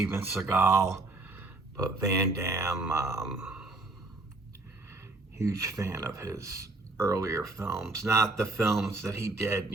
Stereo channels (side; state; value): left; quieter; 3.1 dB